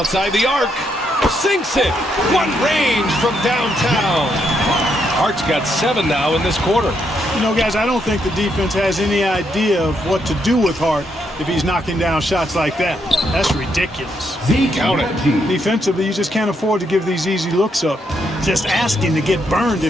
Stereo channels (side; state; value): both; normal; correlation 0.77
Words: the arc. Sinks it. What range from downtown. Hart's got 7 now in this quarter. You know, guys, I don't think the defense has any idea of what to do with Hart if he's knocking down shots like that. That's ridiculous. Count it. Defensively, you just can't afford to give these easy looks up. Just asking to get burned